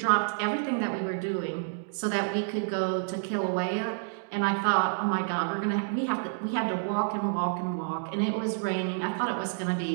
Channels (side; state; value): left; silent; digital silence